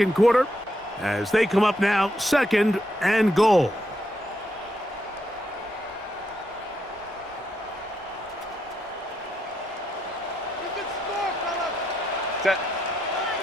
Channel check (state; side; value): normal; both; correlation 0.80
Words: quarter as they come up now, second and goal. Set.